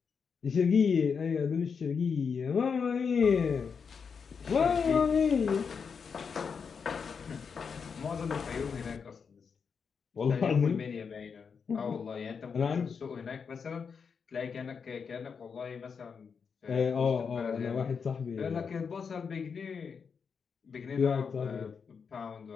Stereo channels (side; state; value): right; quieter; 6.0 dB